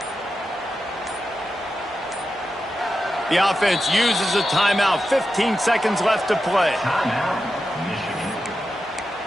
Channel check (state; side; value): normal; both; correlation 0.90